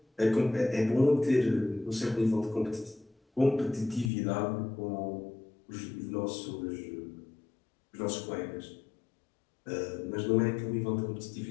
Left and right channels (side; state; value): right; drops out; at 4.1 s